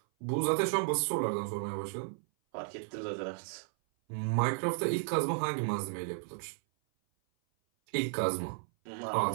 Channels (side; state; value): left; silent; 55 dB below the other